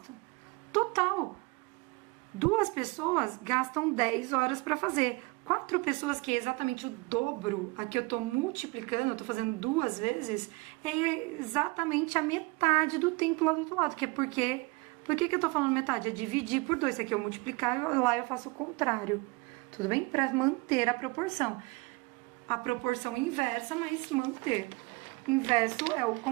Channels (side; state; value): left; quieter; 25.0 dB